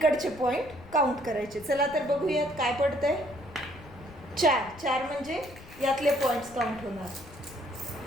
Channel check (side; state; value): left; noise; rumble, 19 dB below the sound